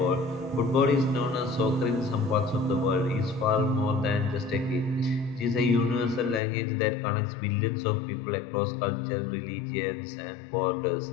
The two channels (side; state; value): right; drops out; at 6.4 s